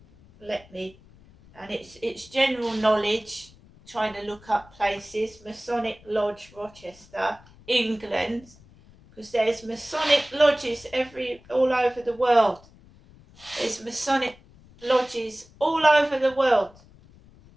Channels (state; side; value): noise; left; rumble, 25 dB below the sound